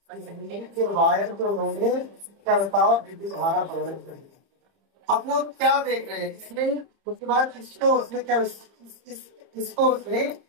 बिजली के वायर को उन्होंने क्या बताओ, विद्युत धारा प्रदान कर दिया। अब वो क्या देख रहे हैं इसमें, उसके बाद इसको उसने क्या, इसको उसने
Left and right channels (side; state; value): left; late; 30 ms